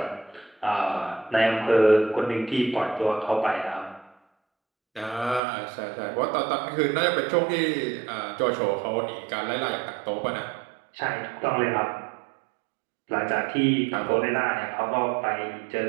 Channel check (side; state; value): left; drops out; at 5.4 s